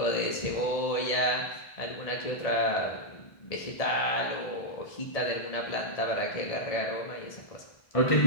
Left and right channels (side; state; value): right; late; 1.7 ms